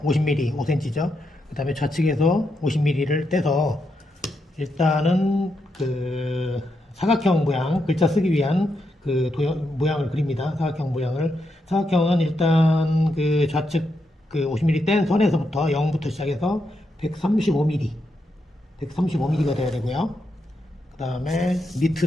50mm, 5cm죠. 그 다음에 좌측에서 50mm를 떼서 일단은 그 사각형 모양, 글자 쓰기 위한 그 모양을 그립니다. 사각형 모양을. 사각형은 일단 그 좌측 그 50mm 뗀 선에서부터 0부터 시작해서 135mm, 135mm가 돼야 되고요. 그 다음에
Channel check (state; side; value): normal; both; correlation 0.83